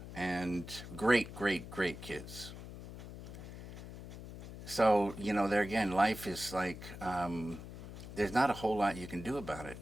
and great kids. So, there again, life is like, there's not a whole lot you can do about it.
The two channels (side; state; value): left; noise; hum, 12 dB below the sound